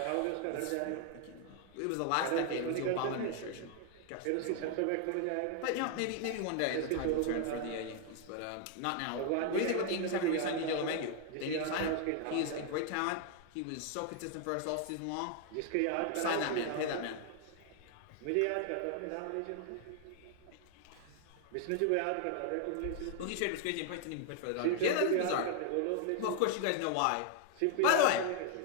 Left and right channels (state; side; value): different; both; correlation 0.00